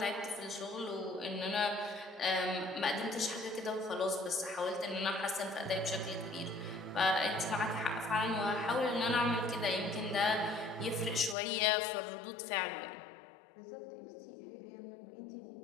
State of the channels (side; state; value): right; drops out; at 11.4 s